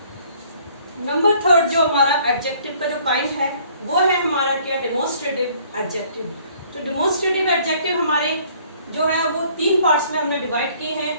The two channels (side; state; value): both; inverted; correlation -0.59